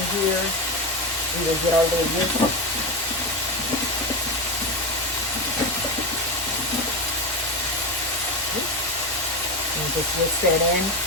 we'll get our lid here. And just whisk that in.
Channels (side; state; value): both; normal; correlation 0.17